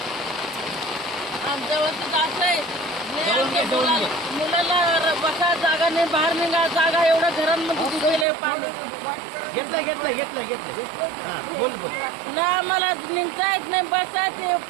आमच्या वस्तीत असं आहे, मुलाला बसा जागा नाही, बाहेर निघा जागा, एवढ्या घरांमध्ये गेले पाणी। घेतलं बोल ना आम्हाला निघता येत नाही, बसा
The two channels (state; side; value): drops out; left; at 8.2 s